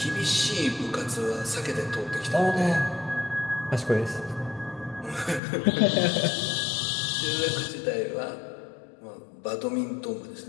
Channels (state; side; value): drops out; right; at 5.4 s